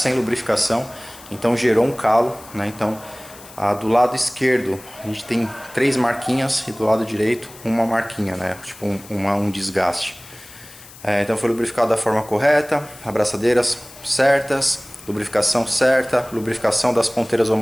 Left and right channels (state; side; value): noise; left; hiss, 20 dB below the sound